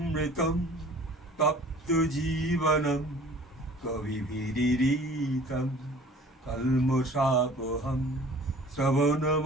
তপ্ত জীবনম কবিভিরিতম কল্মষাপহম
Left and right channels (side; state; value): both; normal; correlation 0.48